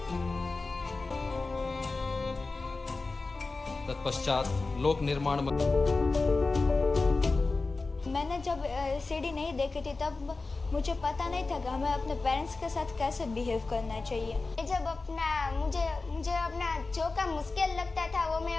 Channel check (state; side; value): quieter; right; 3.7 dB